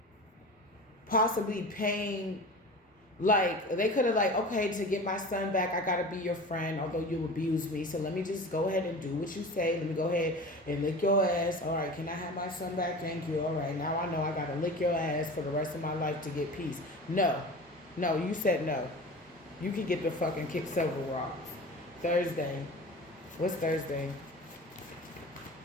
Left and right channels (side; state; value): both; normal; correlation 0.35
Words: possibly paying. Like, they could have like, okay, to get my son back, I got to be your friend, although you abused me. So let me just go ahead and do what you say. Let me go ahead and lick your ass. All right, can I have my son back? Thank you. All right, now I know I got to lick your ass for the rest of my life to get peace. No, you said no. You can get the fucking kick several rocks. Thursday. What's Thursday?